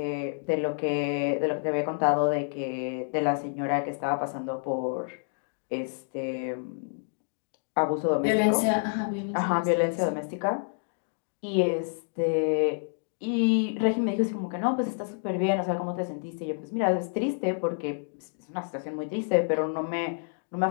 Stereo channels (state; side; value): silent; right; digital silence